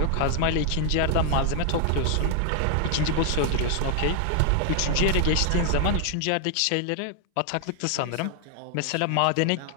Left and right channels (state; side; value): different; both; correlation 0.00